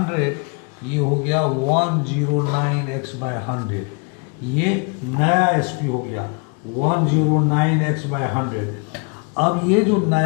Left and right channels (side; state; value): right; quieter; 34.9 dB